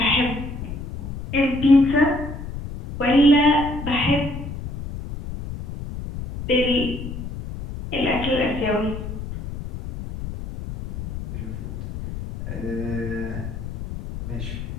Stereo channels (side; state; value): left; noise; rumble, 8 dB below the sound